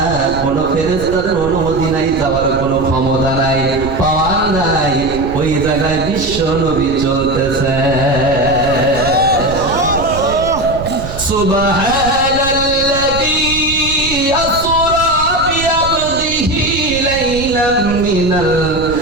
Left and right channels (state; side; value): noise; right; rumble, 10 dB below the sound